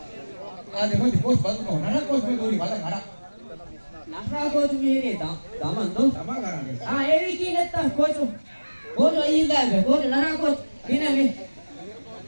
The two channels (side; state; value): both; inverted; correlation -1.00